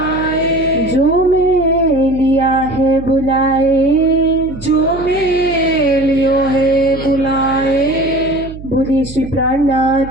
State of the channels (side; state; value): right; noise; hum, 14 dB below the sound